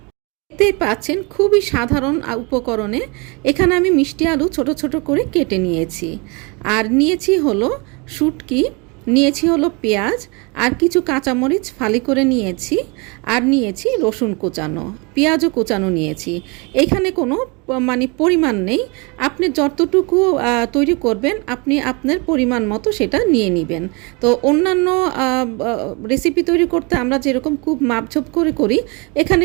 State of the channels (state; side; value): quieter; left; 29.6 dB